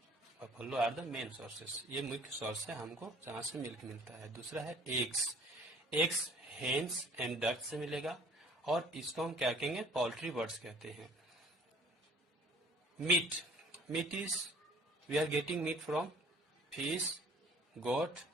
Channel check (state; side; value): normal; both; correlation 0.53